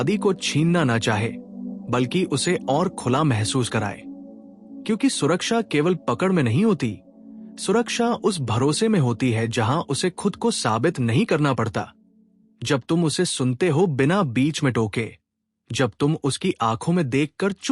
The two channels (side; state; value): both; identical; correlation 1.00